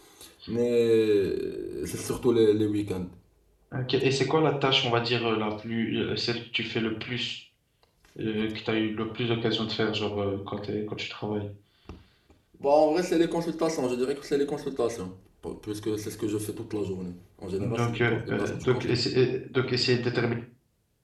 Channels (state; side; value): identical; both; correlation 1.00